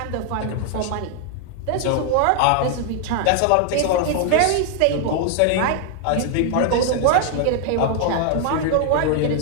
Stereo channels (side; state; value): both; different; correlation 0.00